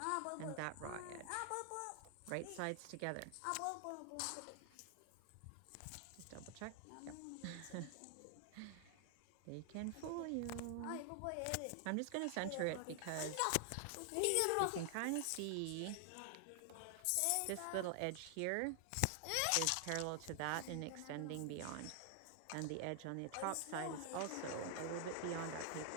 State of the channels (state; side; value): different; both; correlation 0.00